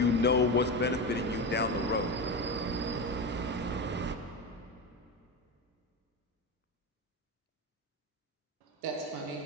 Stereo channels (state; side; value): normal; both; correlation 0.19